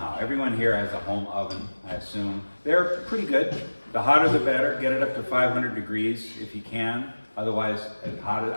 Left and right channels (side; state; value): both; inverted; correlation -1.00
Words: Everyone here has a home oven, I assume. They're pretty good. The hotter the better. Get it up to 500 degrees if you can. Otherwise as